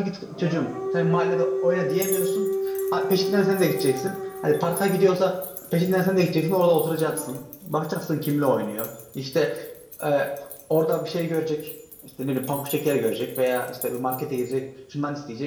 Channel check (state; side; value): identical; both; correlation 1.00